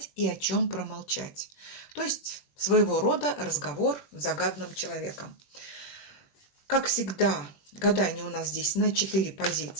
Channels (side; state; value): right; late; 21 ms